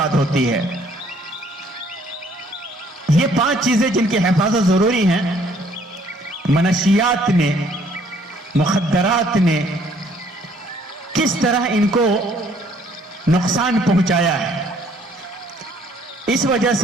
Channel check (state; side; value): normal; both; correlation 0.62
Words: ہوتی ہے. یہ 5 چیزیں جن کی حفاظت ضروری ہیں، منشیات نے، مخدرات نے کس طرح ان کو نقصان پہنچایا ہے. اس وجہ